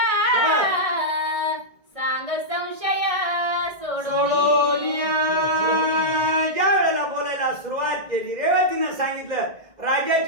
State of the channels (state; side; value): late; left; 1.6 ms